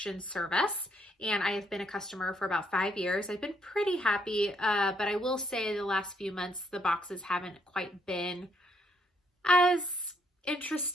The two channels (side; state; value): both; normal; correlation 0.72